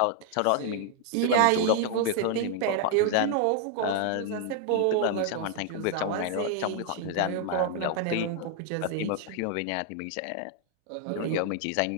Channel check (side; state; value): both; different; correlation 0.00